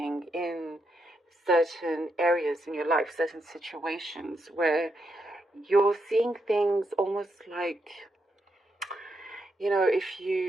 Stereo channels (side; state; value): both; normal; correlation 0.81